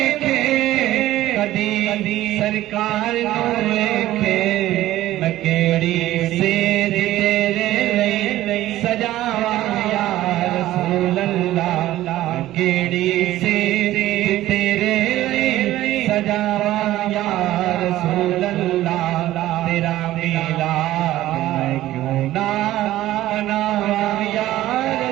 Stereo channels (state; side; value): quieter; left; 14.9 dB